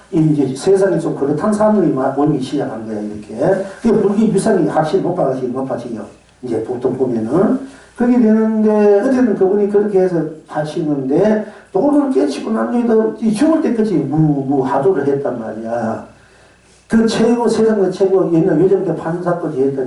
이제 세상에 좀 그렇다는 사람들이 모이기 시작한 거야, 이렇게. 그 불교 유산이 확실히 높아지요. 이제 보통 보면은. 그렇게 되는데, 어쨌든 그분이 그렇게 해서 하시는데, 도를 깨치고 난 뒤에도 죽을 때까지 하도를 했단 말이야. 그 최고, 세상의 최고, 옛날 요즘 때 판사까지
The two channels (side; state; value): both; identical; correlation 1.00